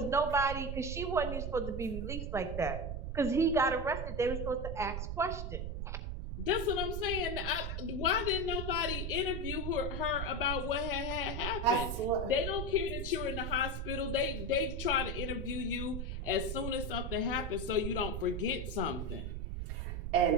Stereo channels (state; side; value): noise; right; rumble, 4 dB below the sound